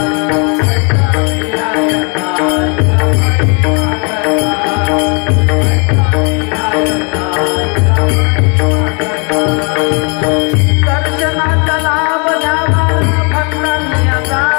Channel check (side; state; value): right; quieter; 35.2 dB